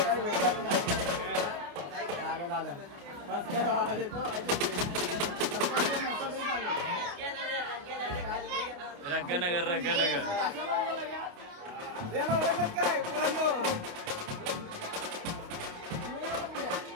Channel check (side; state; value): left; late; 29 ms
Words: भेटलाच नाही. झालं रंगनगर याला ओळखत काय पोरांनो.